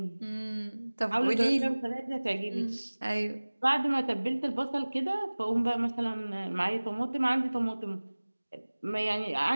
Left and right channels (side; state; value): both; inverted; correlation -1.00